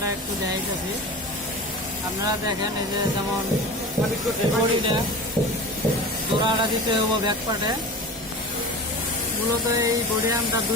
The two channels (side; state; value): both; normal; correlation 0.33